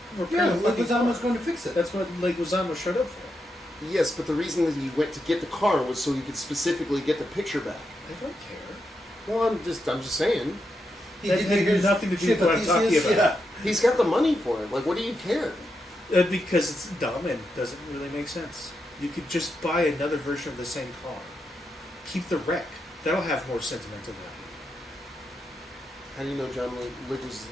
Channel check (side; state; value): both; normal; correlation 0.84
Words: repair Yeah, the fucking car. Leguizamo's going to fix it. That's what Leguizamo showed up for. Yes, but the reason that he went to get the car was so he could specifically get the picture back. I don't care. Well, I'm just saying. That had nothing to do with what I'm talking about. Yeah. He's got the money for it. Like, what do you care? Because it's dumb and doesn't really make sense. You could just buy another version of the same car. Keep the wreck. That'll have more sentimental value. How do you know John Wick